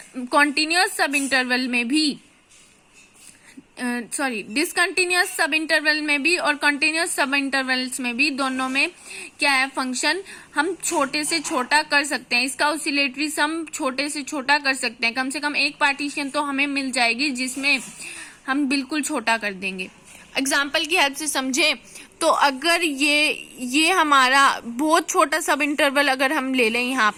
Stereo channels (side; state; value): both; identical; correlation 1.00